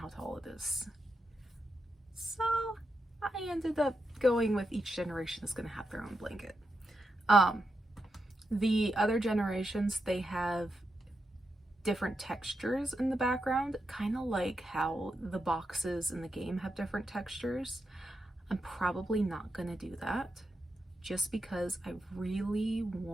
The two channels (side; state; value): both; normal; correlation 0.86